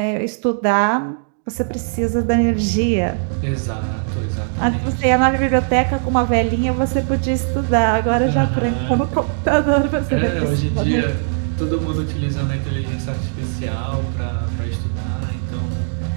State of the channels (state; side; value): silent; left; digital silence